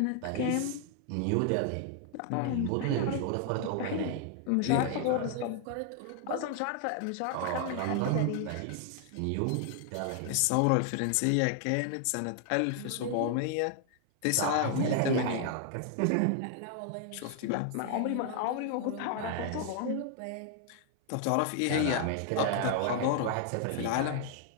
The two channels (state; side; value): different; both; correlation 0.00